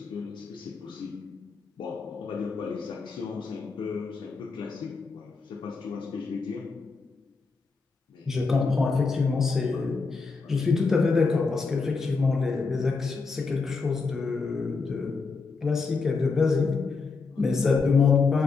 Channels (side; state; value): right; quieter; 4.5 dB